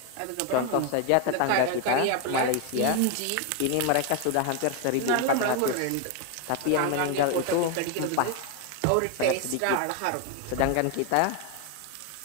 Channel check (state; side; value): different; both; correlation 0.01